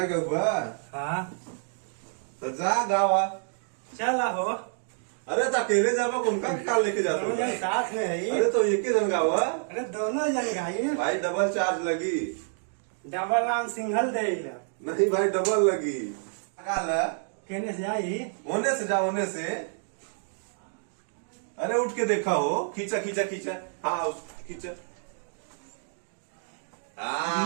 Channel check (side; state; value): left; silent; digital silence